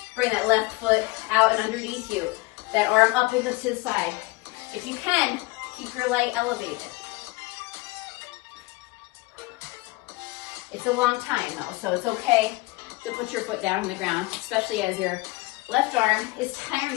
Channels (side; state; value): right; quieter; 22.5 dB